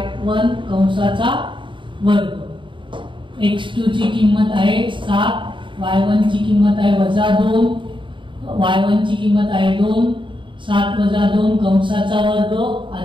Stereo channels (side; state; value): left; late; 0.24 ms